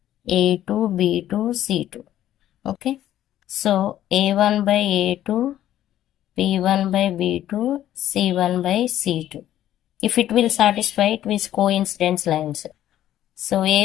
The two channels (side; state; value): right; quieter; 12.3 dB